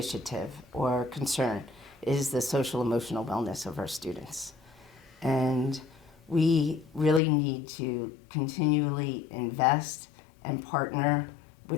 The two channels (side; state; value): right; drops out; at 7.2 s